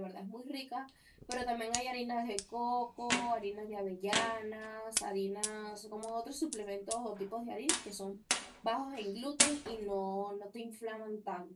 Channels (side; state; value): both; identical; correlation 1.00